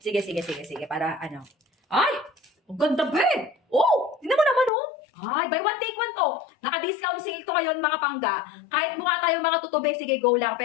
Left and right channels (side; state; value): right; drops out; at 4.7 s